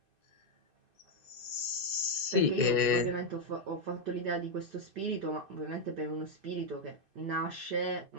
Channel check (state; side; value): late; left; 2.5 ms